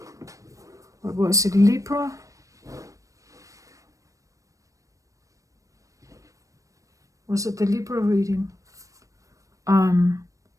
what was it, Libra? Was it the Libra reading?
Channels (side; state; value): left; late; 0.16 ms